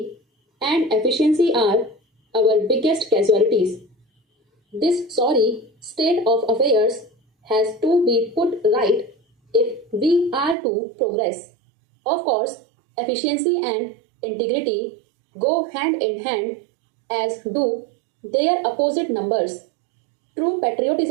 and efficiency are our biggest casualties. This sorry state of affairs has to be put right if we are to progress. Of course, efficiency and integrity go hand in hand, as do their opposite numbers. True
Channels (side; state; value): left; drops out; at 10.6 s